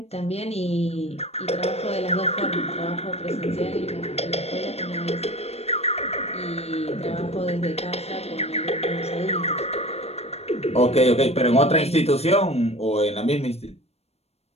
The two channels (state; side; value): late; right; 0.30 ms